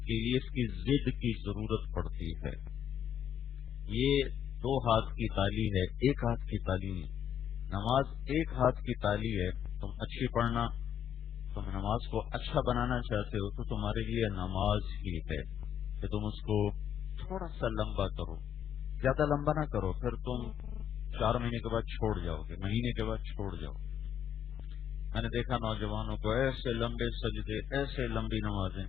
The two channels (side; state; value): right; quieter; 9.4 dB